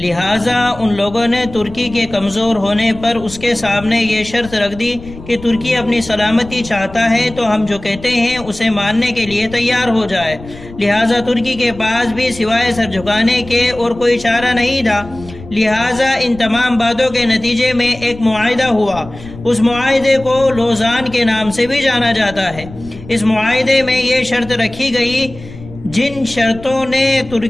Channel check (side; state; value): left; noise; rumble, 16 dB below the sound